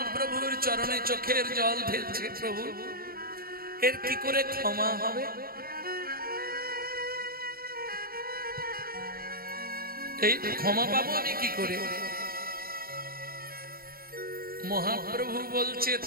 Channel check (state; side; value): late; left; 0.43 ms